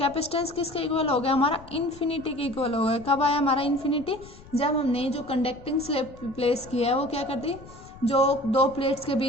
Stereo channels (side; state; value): left; noise; rumble, 20 dB below the sound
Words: किसके इक्वल हो गया, हमारा इन्फिनिटी के इक्वल हो गया। कब आया हमारा इन्फिनिटी, जब हमने जो कंडक्टिंग स्लैब प्लेस किया है वो क्या कर दी, जो दो प्लेट्स के